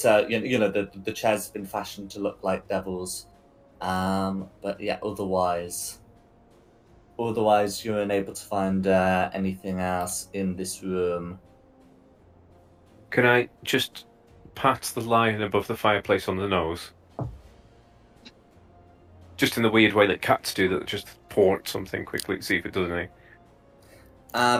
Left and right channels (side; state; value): both; identical; correlation 1.00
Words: the chairs have been fashioned to look like devils, but yeah, otherwise you're unable to find anything else in this room. Can I just pat the lion above the fireplace on the nose? Just in the weird way that cats do, that just port something quickly to see if it does anything.